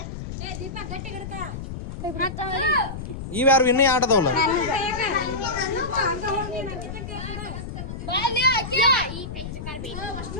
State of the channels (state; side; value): noise; left; rumble, 8 dB below the sound